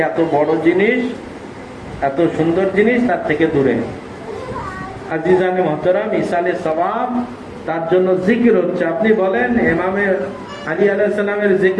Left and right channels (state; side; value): identical; both; correlation 1.00